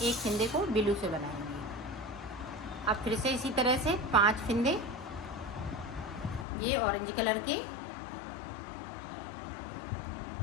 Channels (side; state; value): right; drops out; at 6.5 s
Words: फिंदे को ब्लू से बनाएंगे। अब फिर से इसी तरह से 5 फिंदे ये ऑरेंज कलर के,